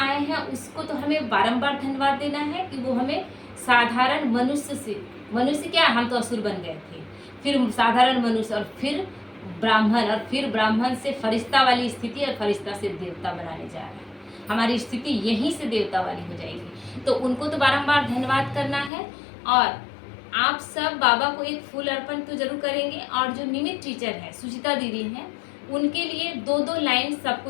हैं, उसको तो हमें बारंबार धन्यवाद देना है कि वो हमें साधारण मनुष्य से, मनुष्य क्या, हम तो असुर बन गए थे, फिर साधारण मनुष्य, और फिर ब्राह्मण, और फिर ब्राह्मण से फरिश्ता वाली स्थिति, और फरिश्ता से देवता बनाने जा रहा है। हमारी स्थिति यहीं से देवता वाली हो जाएगी। तो उनको तो बारंबार धन्यवाद करना है। और आप सब बाबा को एक फूल अर्पण तो जरूर करेंगे। और जो निमित टीचर है, सुचिता दीदी हैं, उनके लिए 2-2 लाइन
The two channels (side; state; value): right; drops out; at 18.9 s